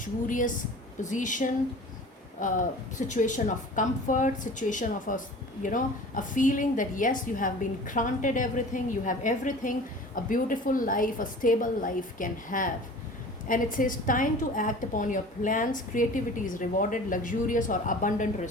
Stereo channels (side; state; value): both; normal; correlation 0.42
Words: position, situation of comfort, situation of a feeling that yes, you have been granted everything, you have everything a beautiful life, a stable life can have. And it says time to act upon your plans. Creativity is rewarded, luxurious or abundant